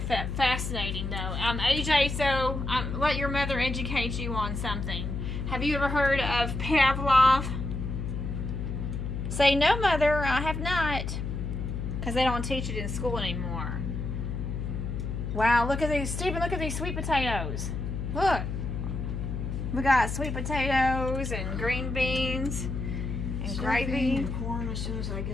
fascinating, though. AJ, so let your mother educate you on something. Have you ever heard of Pavlov? Say no, mother. I have not, because they don't teach it in school anymore. Wow, look at these, Stephen. Look at these sweet potatoes. Look, we got sweet potatoes and green beans and Stuffing gravy. and corn as soon as I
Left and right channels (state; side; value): noise; left; hum, 3 dB below the sound